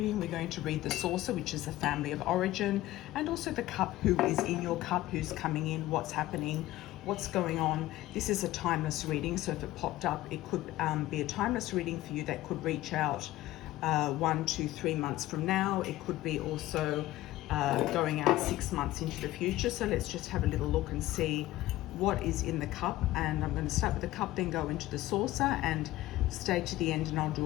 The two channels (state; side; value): quieter; right; 16.2 dB